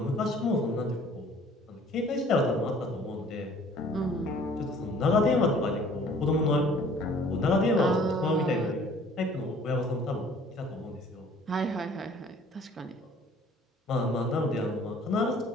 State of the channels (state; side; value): normal; both; correlation 0.53